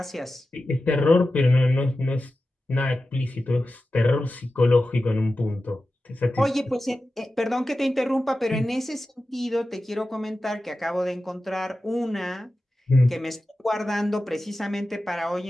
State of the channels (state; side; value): normal; both; correlation 0.93